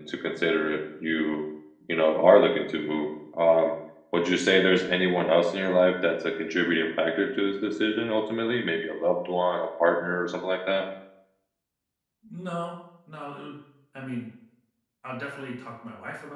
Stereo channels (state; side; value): identical; both; correlation 1.00